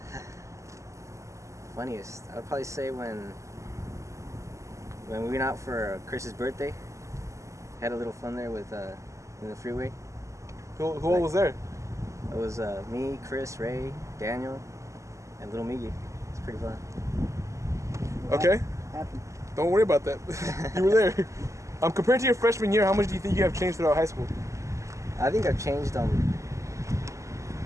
Funniest, I would probably say when we went out for Chris's birthday. Had a little fun there with in the freeway. Who all was there? It was me, Chris, Ray, Daniel, and little Miggy. It's pretty fun. Okay. Don't worry about that. You were there. Compared to your freshman year, how much do you think you have changed throughout high school? I think I've changed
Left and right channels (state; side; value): late; left; 0.15 ms